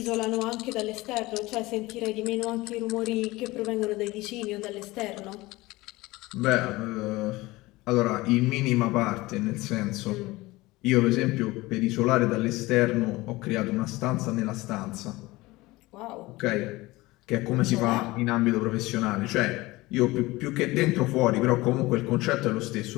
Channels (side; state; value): right; quieter; 20.3 dB